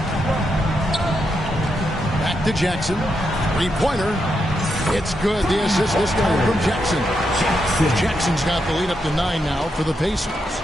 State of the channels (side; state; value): both; normal; correlation 0.83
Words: Back to Jackson. 3-pointer. It's good. The assist this time from Jackson. Jackson's got the lead up to 9 now for the Pacers.